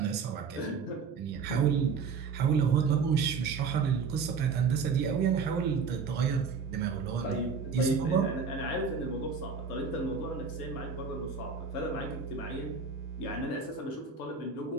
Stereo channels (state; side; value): quieter; left; 5.4 dB